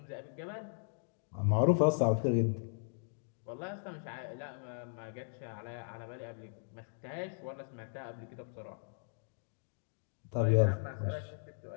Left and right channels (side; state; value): right; silent; digital silence